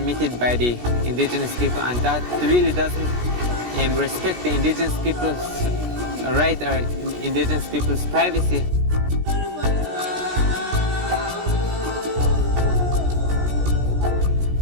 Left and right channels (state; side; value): late; left; 17 ms